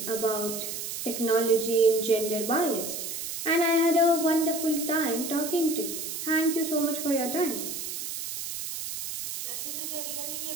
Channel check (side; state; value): right; noise; hiss, 6 dB below the sound